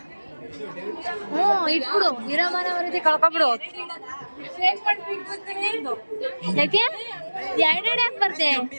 ಇಟ್ಬಿಡು, ಇರೋ ಮನವರಿತಿ ಕಳ್ಕೊಬಿಡು. ಯಾಕೆ ಎರಡೆರಡು ಯಾಕೆ ಬರ್ತೆ?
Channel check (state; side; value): inverted; both; correlation -1.00